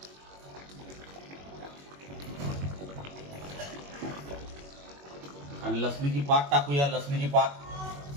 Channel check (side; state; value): left; late; 21 ms